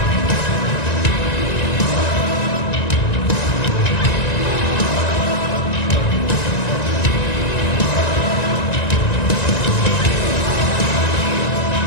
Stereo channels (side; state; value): right; late; 1.9 ms